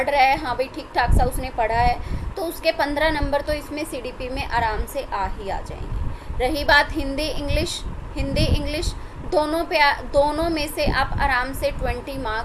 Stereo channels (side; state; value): both; identical; correlation 1.00